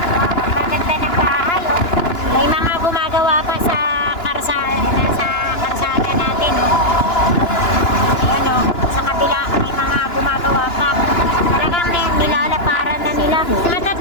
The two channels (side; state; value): right; late; 2.9 ms